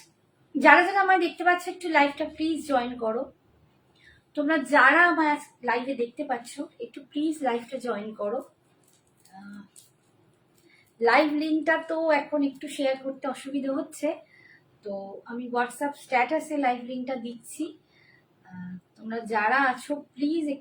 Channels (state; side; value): identical; both; correlation 1.00